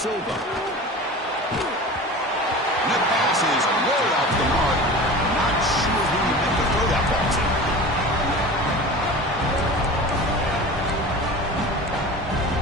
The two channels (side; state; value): both; normal; correlation 0.35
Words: And that pass is way off the mark. Not sure who you meant to throw that ball to.